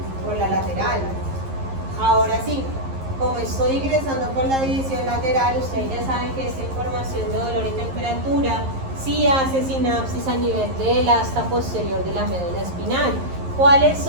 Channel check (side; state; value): left; late; 11 ms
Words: Por la lateral. Ahora sí, como estoy ingresando por la división lateral, ustedes ya saben que esta información de dolor y temperatura sí hace sinapsis a nivel del asta posterior de la médula espinal. ¿Cuáles